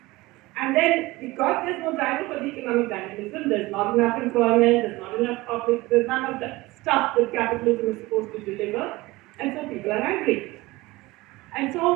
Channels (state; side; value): quieter; left; 20.6 dB